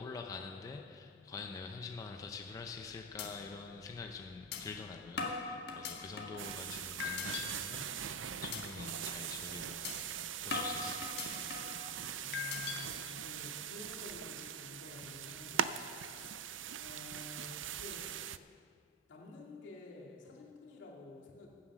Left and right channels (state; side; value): normal; both; correlation 0.06